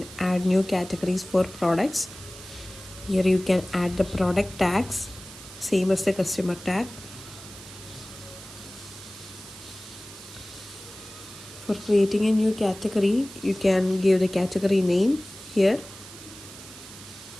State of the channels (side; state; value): right; noise; hiss, 16 dB below the sound